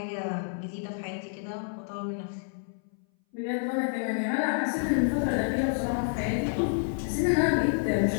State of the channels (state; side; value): silent; right; 59 dB below the other